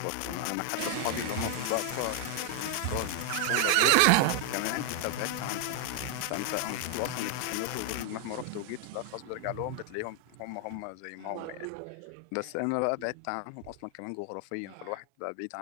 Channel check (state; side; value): different; both; correlation 0.00